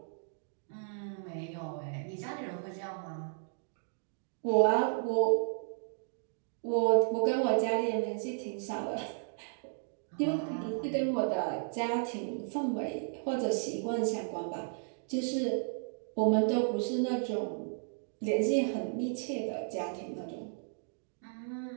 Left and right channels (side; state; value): left; silent; digital silence